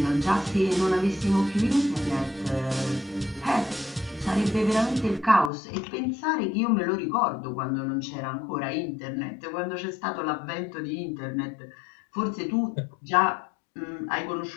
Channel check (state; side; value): drops out; right; at 5.5 s